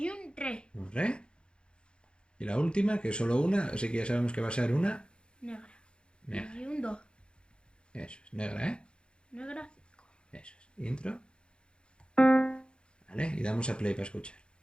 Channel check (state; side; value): late; right; 0.053 ms